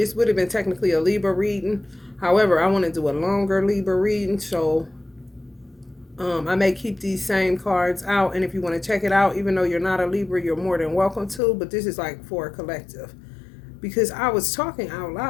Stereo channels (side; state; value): right; drops out; at 11.4 s